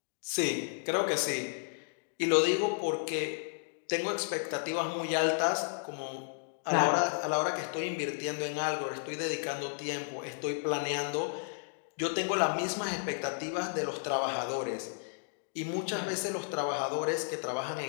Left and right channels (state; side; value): silent; right; digital silence